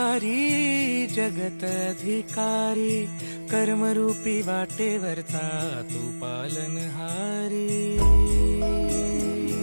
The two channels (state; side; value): inverted; both; correlation -1.00